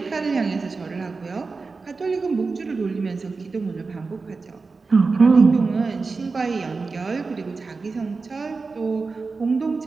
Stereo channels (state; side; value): quieter; left; 4.2 dB